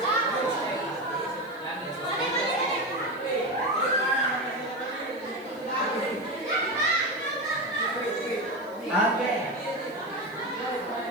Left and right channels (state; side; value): noise; left; hiss, 27 dB below the sound